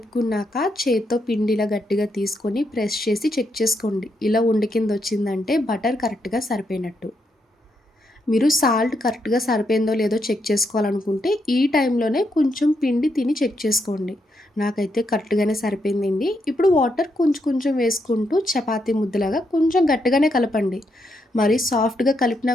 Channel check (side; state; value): both; normal; correlation 0.80